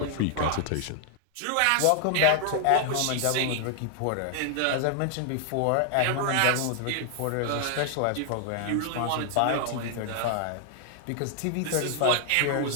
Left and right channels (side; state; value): both; different; correlation -0.01